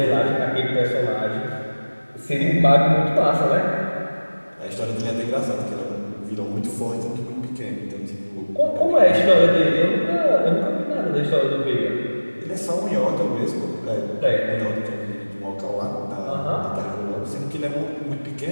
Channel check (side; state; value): both; inverted; correlation -1.00